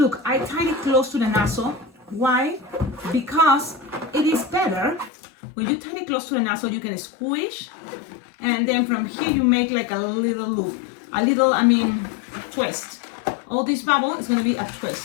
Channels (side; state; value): right; drops out; at 5.1 s